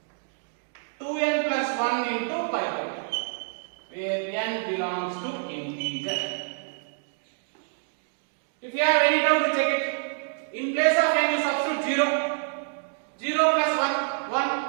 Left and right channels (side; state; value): left; silent; digital silence